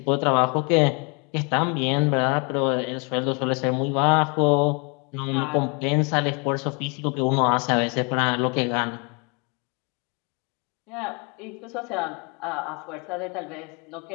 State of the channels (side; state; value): right; quieter; 33.2 dB